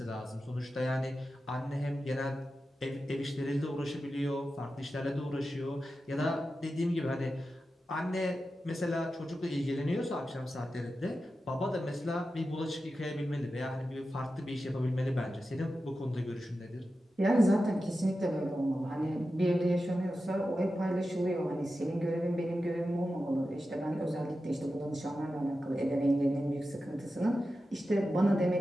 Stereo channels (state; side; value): normal; both; correlation 0.92